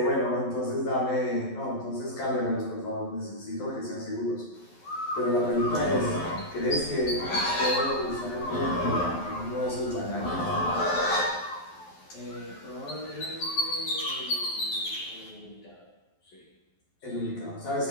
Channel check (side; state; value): right; late; 11 ms